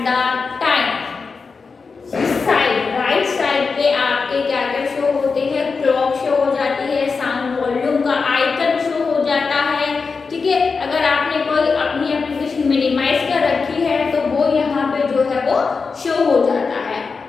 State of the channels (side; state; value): right; quieter; 4.8 dB